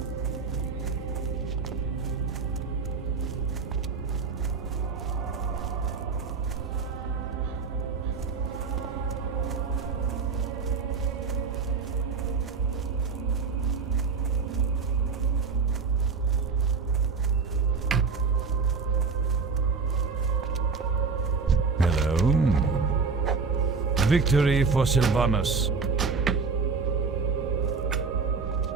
Hello. Victory for Sylvanus.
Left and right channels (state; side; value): quieter; left; 5.0 dB